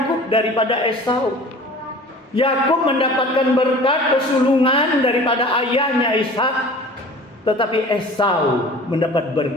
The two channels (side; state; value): both; normal; correlation 0.43